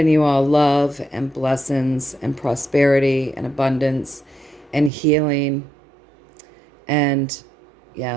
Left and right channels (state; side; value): drops out; left; at 4.9 s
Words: you all love and blessings and prosperity and abundance and healing. And